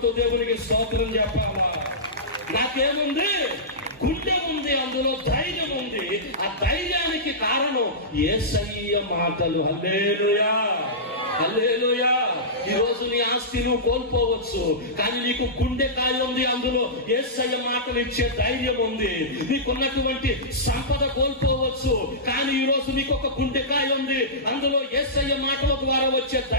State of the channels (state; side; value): normal; both; correlation -0.17